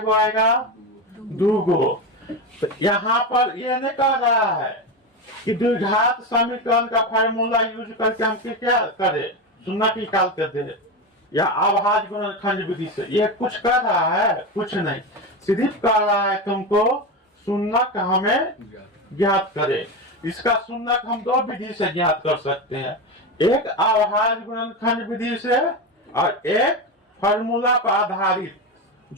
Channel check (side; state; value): both; normal; correlation 0.18